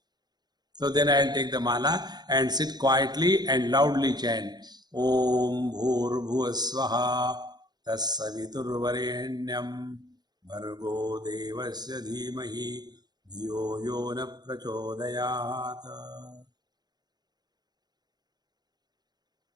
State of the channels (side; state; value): left; late; 0.20 ms